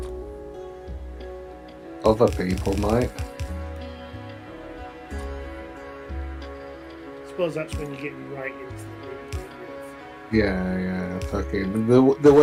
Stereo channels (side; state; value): both; identical; correlation 1.00